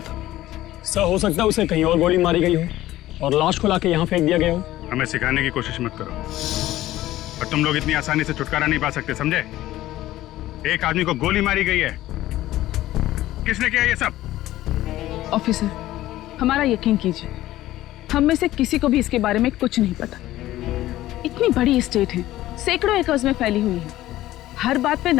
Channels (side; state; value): right; quieter; 15.2 dB